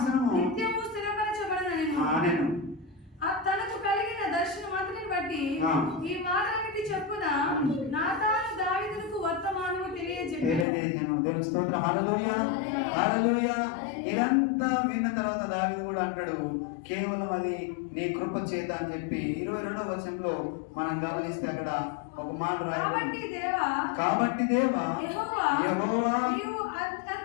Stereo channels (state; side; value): drops out; right; at 10.7 s